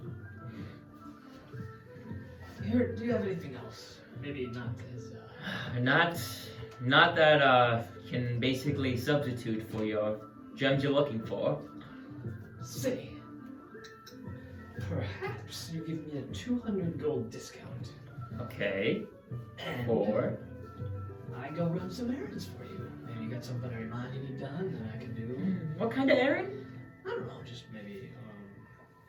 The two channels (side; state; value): both; identical; correlation 1.00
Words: Here, do you have anything else? Maybe not as. Not that can basically substitute for your gems you're looking for. Say, perhaps you give me a 200 gold discount. Okay. And For I go run some errands for you. Maybe you got something on your mind you need done that I can do. what kind of errand? I don't know, just maybe